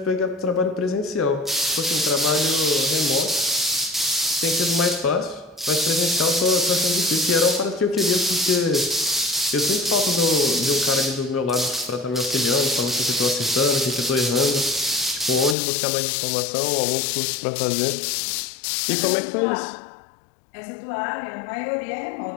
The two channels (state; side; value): drops out; right; at 15.6 s